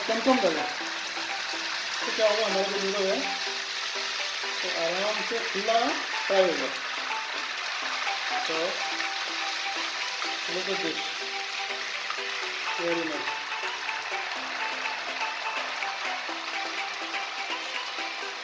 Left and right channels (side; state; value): both; identical; correlation 1.00